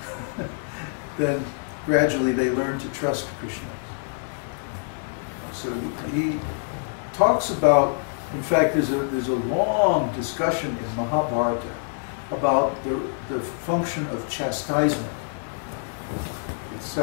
Then gradually they learn to trust Krishna. So he talks about, in fact, there's a long discussion in Mahabharata about the function of chastisement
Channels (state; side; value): silent; right; digital silence